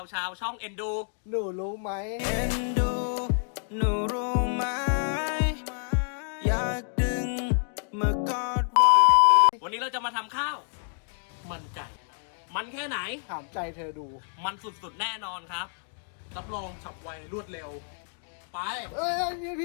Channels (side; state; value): right; silent; digital silence